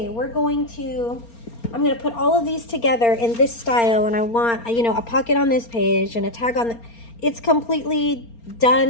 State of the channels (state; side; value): late; right; 4.3 ms